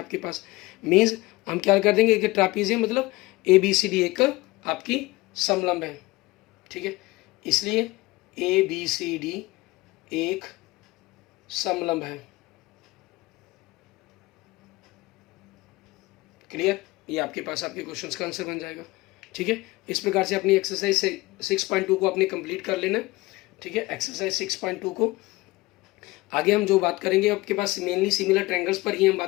पास, मीन्स हम क्या कर देंगे कि ट्रैपीजियम मतलब ABCD एक आपकी समलंब है, ठीक है। इसलिए ABCD एक समलंब है, क्लियर। ये आपके पास आपके क्वेश्चंस का आंसर बन जाएगा, ठीक है। इस प्रकार से अपनी एक्सरसाइज 6.2 को आपने कंप्लीट कर लेना, ठीक है। एक्सरसाइज 6.2 को आगे हम जो बात करेंगे आपके पास मेनली सिमिलर ट्रायंगल्स पर ही हम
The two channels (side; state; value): right; quieter; 20.9 dB